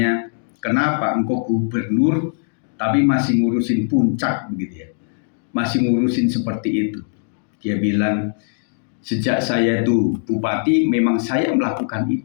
kenapa engkau gubernur tapi masih ngurusin puncak begitu ya, masih ngurusin seperti itu. Dia bilang, sejak saya itu bupati memang saya melakukan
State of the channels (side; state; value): right; silent; digital silence